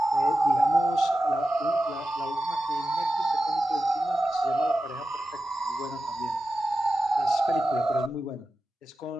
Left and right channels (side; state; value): both; normal; correlation 0.93